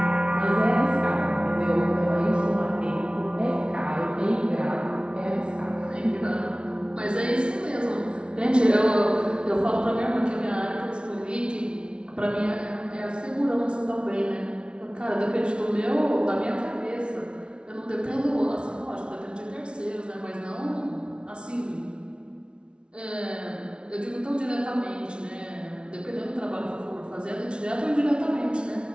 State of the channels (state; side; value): late; left; 0.057 ms